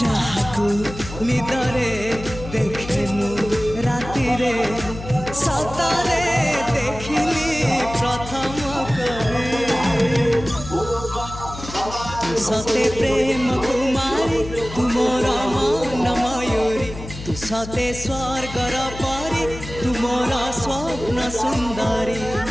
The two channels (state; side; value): noise; left; hum, 12 dB below the sound